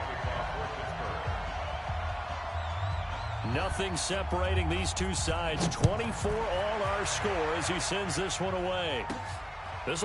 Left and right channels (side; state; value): both; identical; correlation 1.00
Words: Nothing separating these two sides. 24 all our score as he sends this one away. This